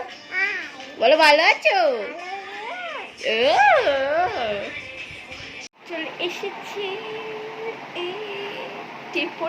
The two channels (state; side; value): identical; both; correlation 1.00